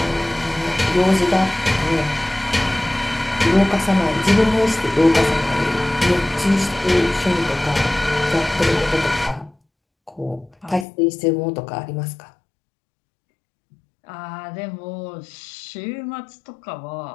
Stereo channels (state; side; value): drops out; right; at 10.9 s